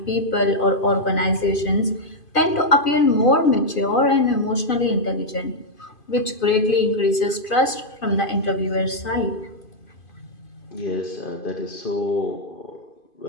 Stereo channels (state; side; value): late; right; 2.5 ms